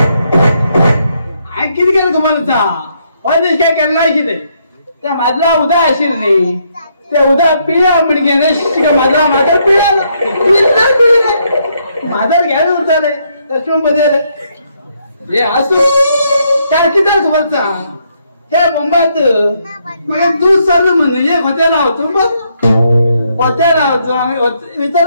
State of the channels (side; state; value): both; inverted; correlation -0.74